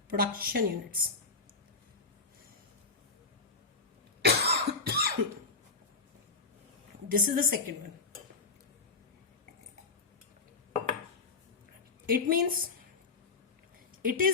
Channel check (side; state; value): right; quieter; 4.2 dB